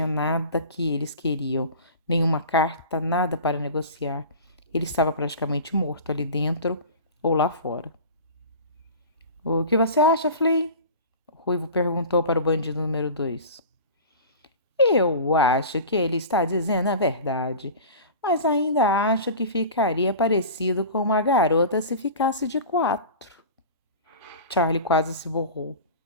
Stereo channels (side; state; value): both; inverted; correlation -0.35